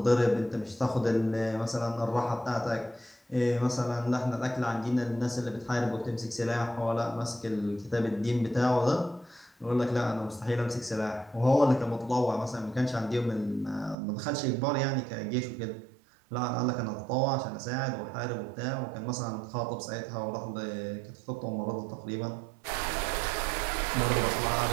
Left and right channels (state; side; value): drops out; left; at 14.0 s